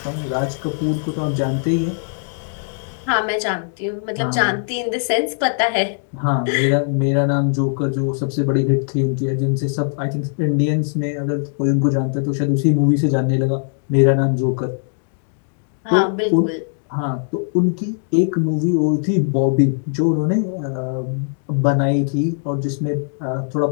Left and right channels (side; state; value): right; silent; digital silence